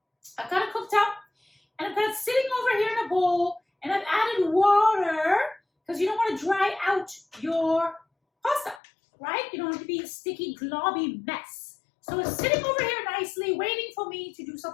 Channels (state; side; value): drops out; right; at 8.8 s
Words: I've got it cooked up and I've got it sitting over here in a bowl, and I've added water because you don't want to dry out your pasta, right? You don't want it to be a sticky, globby mess. So it's sitting over here nicely, waiting for me to do